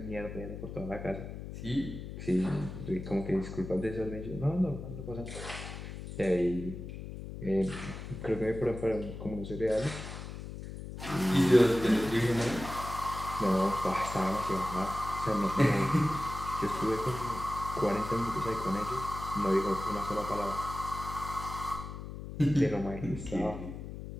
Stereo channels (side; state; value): left; noise; hum, 9 dB below the sound